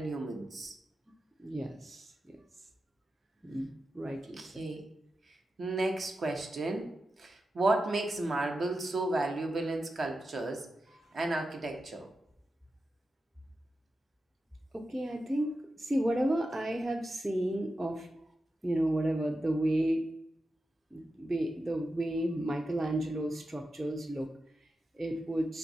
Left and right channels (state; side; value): normal; both; correlation 0.90